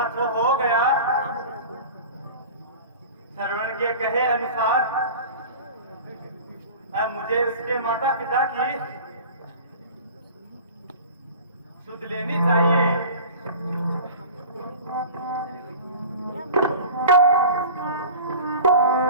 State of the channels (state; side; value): inverted; both; correlation -0.38